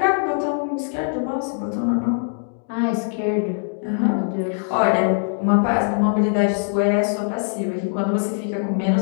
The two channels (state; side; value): silent; right; digital silence